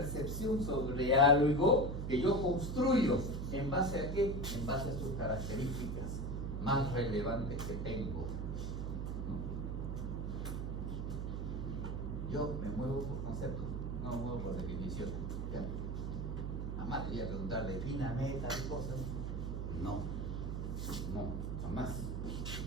sobre algo que yo construyo. ¿En base a qué? En base a sus características más relevantes que tengo. Yo me muevo por conceptos, no me muevo por definiciones. ¿Ya? Jamás te voy a preguntar, defíname tal cosa. No, jamás.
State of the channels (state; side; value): noise; right; hum, 3 dB below the sound